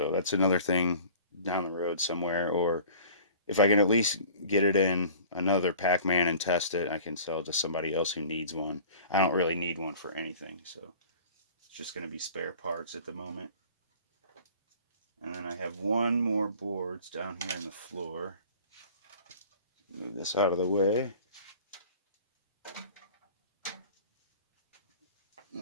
that's another thing down the road somewhere, or if I can at least get it in another Pac-Man and test it, I can sell it to somebody else who needs one. I don't really need one for anything, so it's just going to be spare parts at the moment. And then I have one more boards down here on the floor. Move this out of the way.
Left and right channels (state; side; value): inverted; both; correlation -0.46